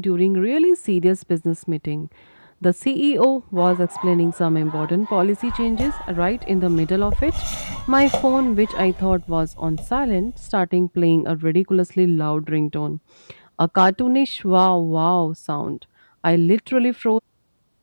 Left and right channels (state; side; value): inverted; both; correlation -1.00